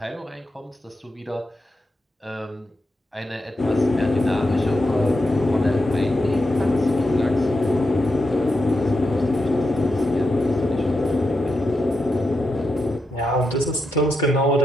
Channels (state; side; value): normal; both; correlation 0.86